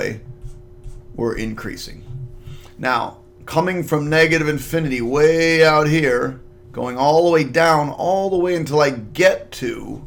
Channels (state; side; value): identical; both; correlation 1.00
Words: we're increasing. Now, coming from negative infinity way out here, going all the way down, all the way until I get to